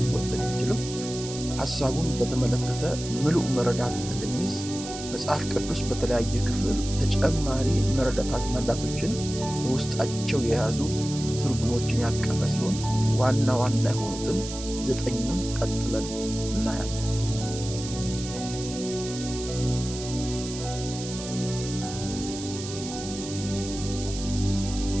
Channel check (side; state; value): right; noise; hiss, 10 dB below the sound